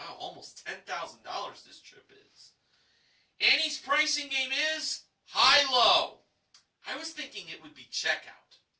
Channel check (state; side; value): identical; both; correlation 1.00